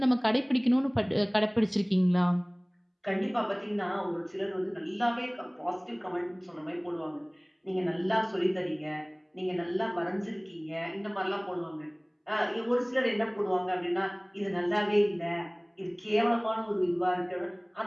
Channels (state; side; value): identical; both; correlation 1.00